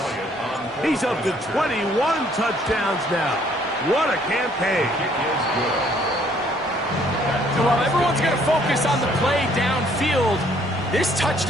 He's up to 21 touchdowns now. What a campaign. So while everyone's going to focus on the play downfield, this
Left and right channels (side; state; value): both; normal; correlation 0.63